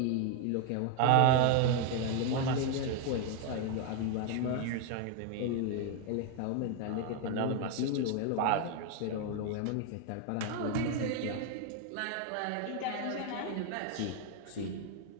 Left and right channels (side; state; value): both; different; correlation 0.01